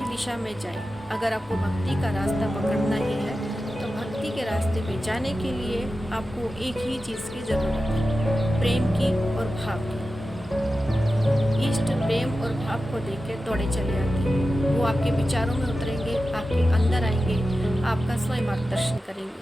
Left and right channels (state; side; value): normal; both; correlation 0.93